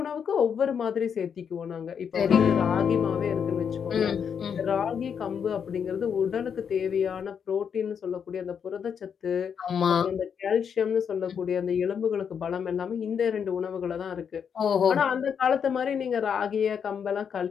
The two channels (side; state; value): right; quieter; 7.3 dB